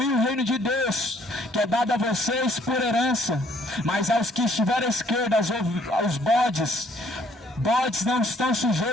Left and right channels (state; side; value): normal; both; correlation 0.63